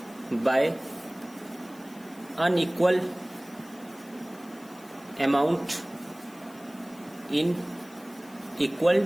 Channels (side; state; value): left; noise; hiss, 23 dB below the sound